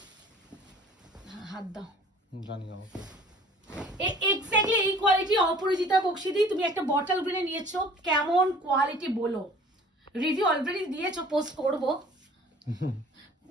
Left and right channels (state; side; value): normal; both; correlation 0.49